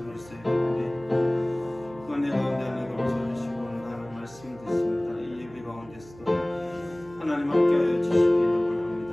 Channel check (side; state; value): right; noise; hum, 21 dB below the sound